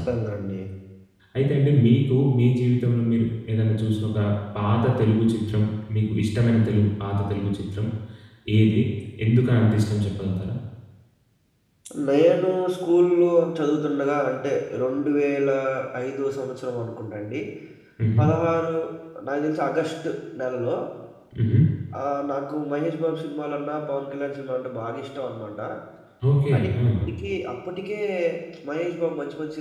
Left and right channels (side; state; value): both; identical; correlation 1.00